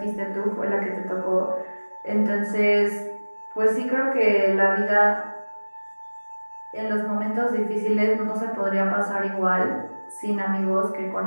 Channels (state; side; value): inverted; both; correlation -1.00